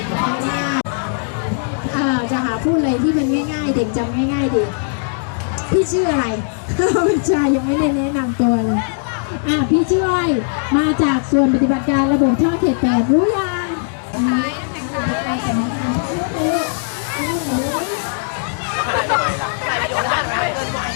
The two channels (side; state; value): right; silent; digital silence